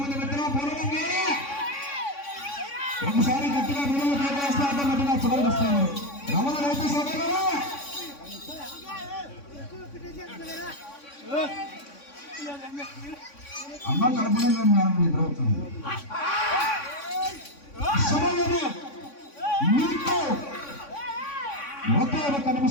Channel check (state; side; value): late; right; 3.6 ms